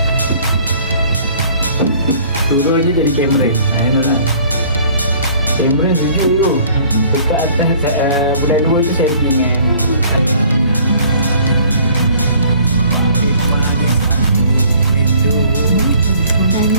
Turun je jadi Cameron. Cameron sejuk tu. Dekat atas bulan 2 tu saya pergi dengan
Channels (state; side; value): inverted; both; correlation -0.55